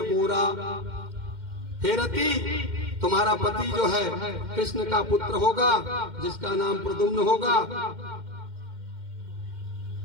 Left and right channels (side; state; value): left; late; 2.1 ms